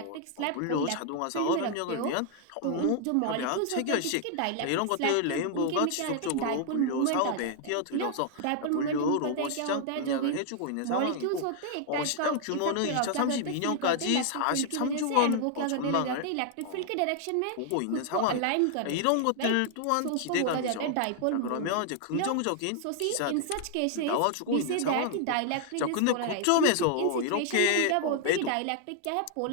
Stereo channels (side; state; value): both; different; correlation 0.00